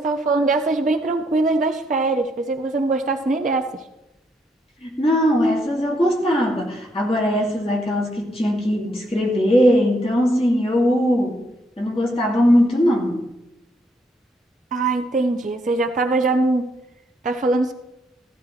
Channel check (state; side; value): normal; both; correlation 0.74